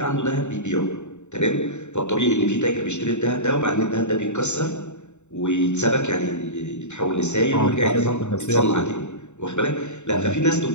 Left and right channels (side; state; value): right; late; 0.83 ms